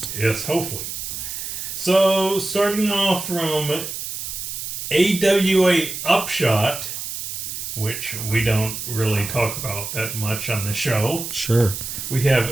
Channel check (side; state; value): right; noise; hiss, 6 dB below the sound